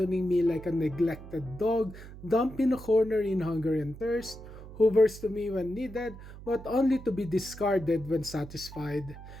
me like a neglected dog, dumped in a corner in hunger and thirst, hovers to me when needed, but only to be discarded when satisfied.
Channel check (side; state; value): right; noise; hum, 15 dB below the sound